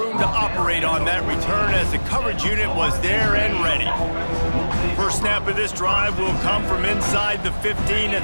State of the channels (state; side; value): inverted; both; correlation -1.00